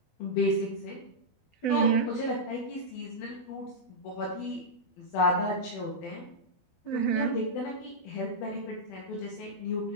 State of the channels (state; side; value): late; right; 12 ms